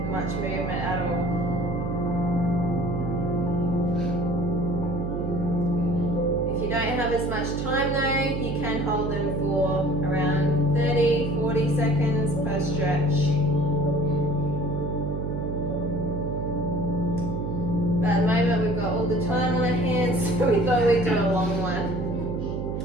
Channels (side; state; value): right; noise; hum, 3 dB below the sound